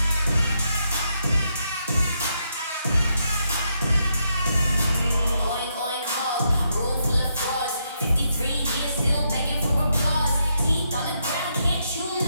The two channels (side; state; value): both; inverted; correlation -0.79